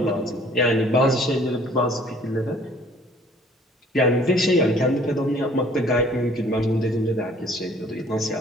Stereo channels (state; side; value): normal; both; correlation 0.55